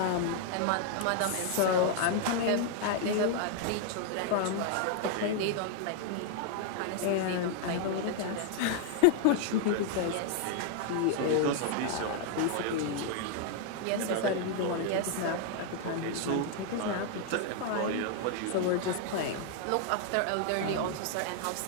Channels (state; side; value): different; both; correlation 0.00